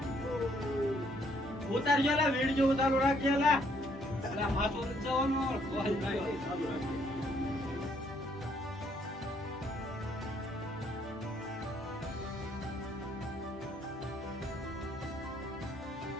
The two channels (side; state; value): both; normal; correlation 0.68